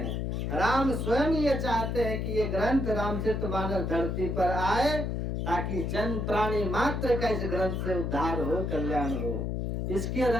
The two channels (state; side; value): noise; left; hum, 1 dB below the sound